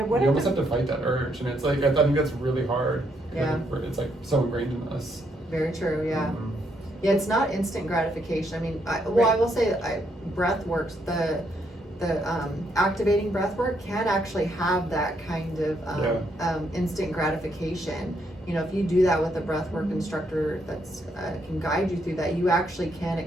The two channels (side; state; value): both; normal; correlation 0.75